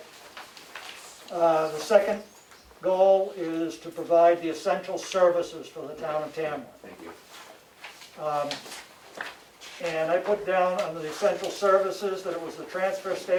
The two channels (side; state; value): both; identical; correlation 1.00